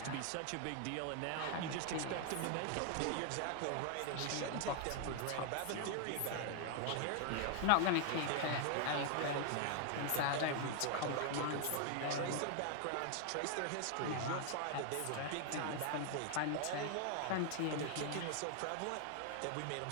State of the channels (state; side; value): different; both; correlation 0.00